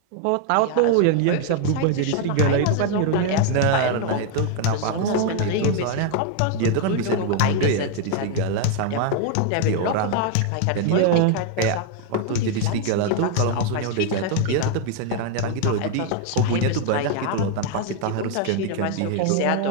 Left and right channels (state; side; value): different; both; correlation 0.00